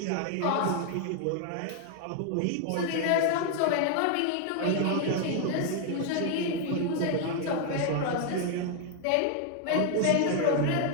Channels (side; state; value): both; different; correlation 0.00